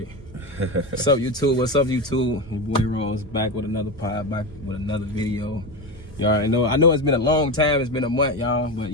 What's up, YouTube? What's up, YouTube? Your boy Rose back with another pod, back with another video. Y'all already know. I know it's been a long time. It's been a month, y'all, but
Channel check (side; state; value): both; normal; correlation 0.18